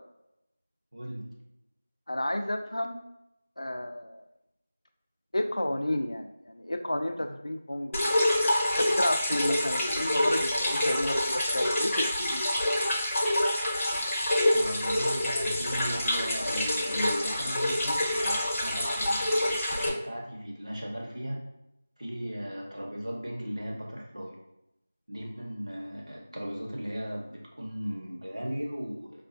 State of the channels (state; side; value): inverted; both; correlation -0.90